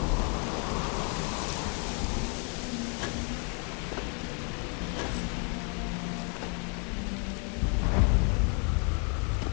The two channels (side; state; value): right; quieter; 38.0 dB